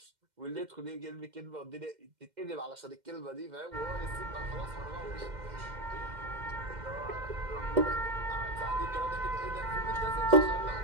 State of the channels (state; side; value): late; left; 2.1 ms